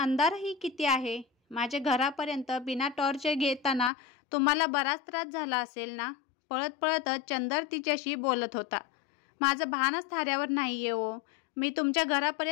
किती आहे. माझ्या घरापर्यंत बिना टॉर्च घेताना तुम्हाला बराच त्रास झाला असेल ना? पळत पळतच चंदर तिच्याशी बोलत होता. माझं भानच थाऱ्यावर नाहीये हो. मी तुमच्या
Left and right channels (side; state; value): right; drops out; at 3.9 s